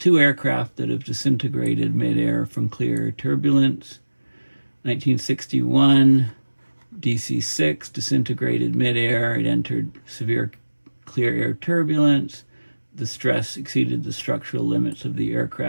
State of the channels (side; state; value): both; inverted; correlation -1.00